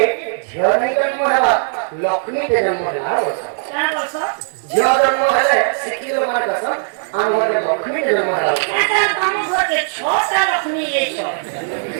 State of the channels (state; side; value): silent; left; digital silence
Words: ଝିଅ ନେଇ ଜନ୍ମ ହେଲା ଲକ୍ଷ୍ମୀ କେ ଜନ୍ମ ହେଲା ଝିଅ ଜନ୍ମ ହେଲେ ଶିକ୍ଷିତ ମାନେ କହିଛନ୍ ଆମ ଘରେ ଲକ୍ଷ୍ମୀ କେ ଜନ୍ମ ହେଲା ଛଅଟା